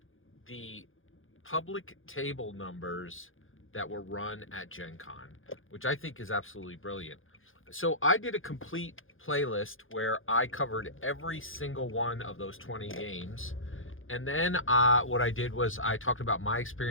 the public table numbers that were run at GenCon, which I think is absolutely brilliant. So I did a complete playlist where I covered every single one of those 20 games. And then what I did was I talked about my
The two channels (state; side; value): late; right; 0.59 ms